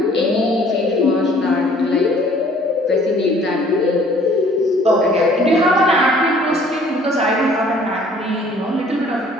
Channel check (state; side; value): normal; both; correlation 0.56